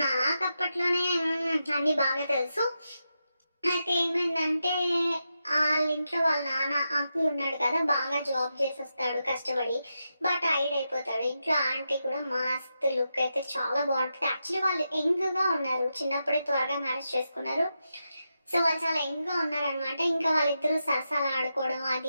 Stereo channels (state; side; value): inverted; both; correlation -0.87